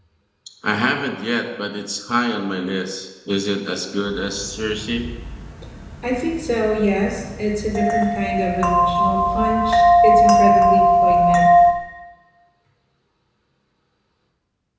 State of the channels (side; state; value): both; identical; correlation 1.00